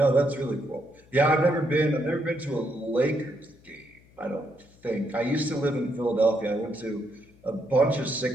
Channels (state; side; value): noise; left; hum, 28 dB below the sound